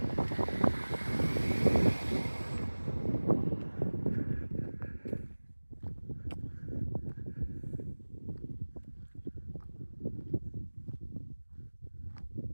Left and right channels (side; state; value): both; inverted; correlation -1.00